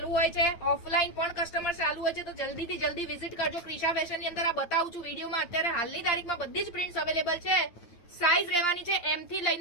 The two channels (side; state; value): right; late; 9.2 ms